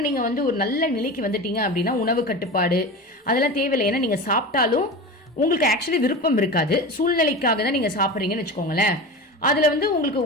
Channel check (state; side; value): normal; both; correlation 0.29